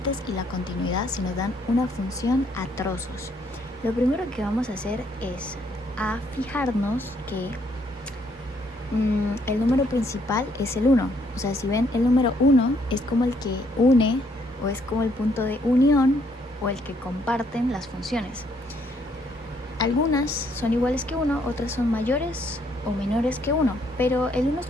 y la continuidad si nos dan una función a trozos. Lo primero que vamos a hacer es a fijarnos que el número principal es el 1. O sea, si ven, el número 1 es como el que une o es como el punto de unión o el que comparten las funciones. Algunas son iguales que 1, otras son mayores o menores que 1, pero el 1 es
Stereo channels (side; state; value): both; normal; correlation 0.69